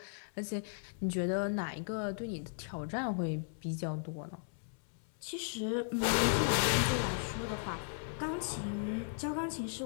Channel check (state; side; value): silent; right; 53 dB below the other